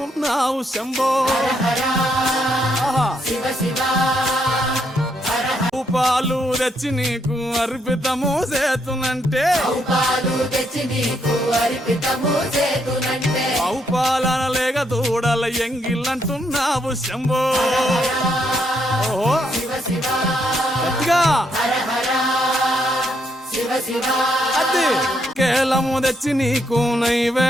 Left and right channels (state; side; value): normal; both; correlation 0.75